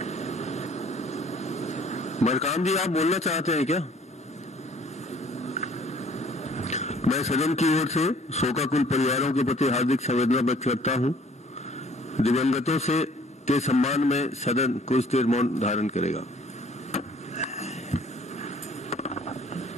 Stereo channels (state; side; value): normal; both; correlation 0.56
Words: मरकाम जी, आप बोलना चाहते हैं क्या? मैं सदन की ओर से शोकाकुल परिवारों के प्रति हार्दिक संवेदना व्यक्त करता हूं। दिवंगतों के सम्मान में सदन कुछ देर मौन धारण करेगा।